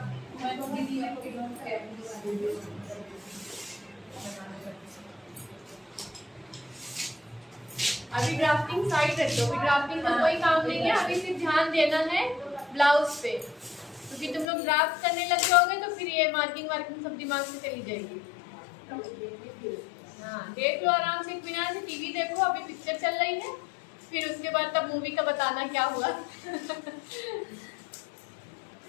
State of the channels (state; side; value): drops out; right; at 14.5 s